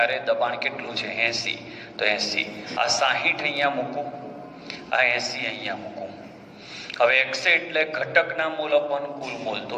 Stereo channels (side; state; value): both; identical; correlation 1.00